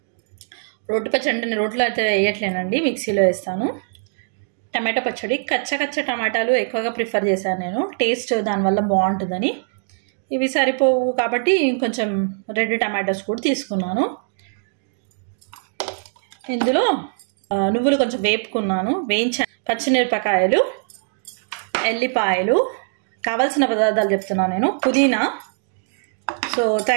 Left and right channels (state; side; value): silent; left; digital silence